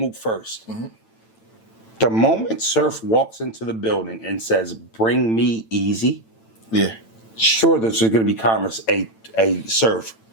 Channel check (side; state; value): right; late; 9.0 ms